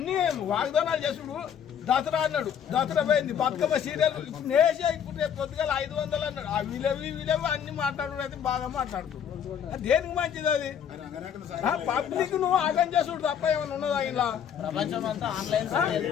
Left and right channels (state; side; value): quieter; right; 8.4 dB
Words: వాగ్దానాలు చేసుడు. దసరా అన్నాడు, దసరా పోయింది. బతుకమ్మ సీరియల్ నేసే ఇప్పుడు రేపు పొద్దుగాల 500 అన్నాడు. ఆ వీలేవి అన్ని మాట్లాడు అయితే బాగా మాట్లాడుతున్నాడు. దేనికి మంచిది అది? పబ్లిక్ నువ్వు ఆగం చేసుడు తప్ప ఏమైనా ఉన్నదా ఇలా?